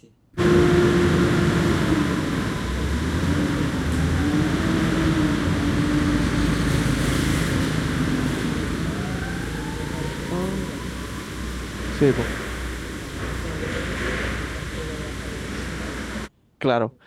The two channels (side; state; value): both; identical; correlation 1.00